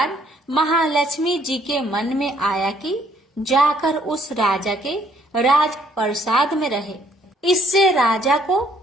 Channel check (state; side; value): normal; both; correlation 0.65